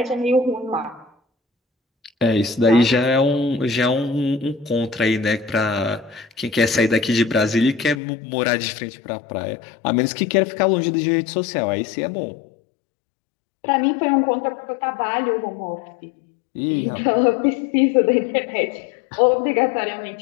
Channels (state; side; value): drops out; right; at 8.0 s